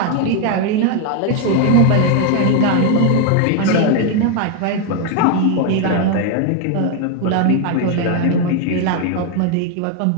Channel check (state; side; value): different; both; correlation 0.01